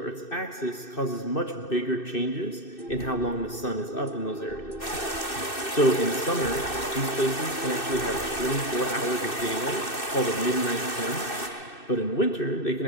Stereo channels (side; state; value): right; late; 2.6 ms